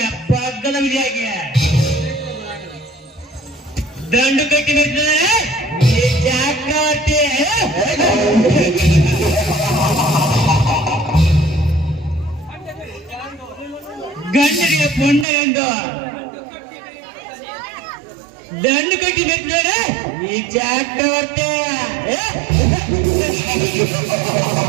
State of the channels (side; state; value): left; drops out; at 15.2 s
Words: ಹಗ್ಗದ ವಿಧಿಯಾಗಿ ದಂಡು ಕಟ್ಟಿ ಬಿಡ್ತಾರೆ ಗಂಡನಿಗೆ ಪೊಂಡ ಎಂದು ದಂಡು ಕಟ್ಟಿ ಬಿಡ್ತಾರೆ ಈ ಚಕ್ರವರ್ತಿ.